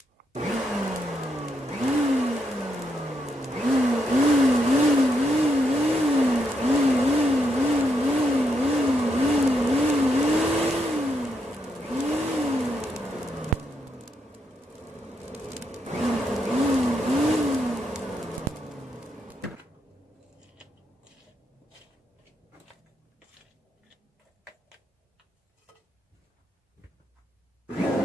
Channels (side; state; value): both; normal; correlation 0.79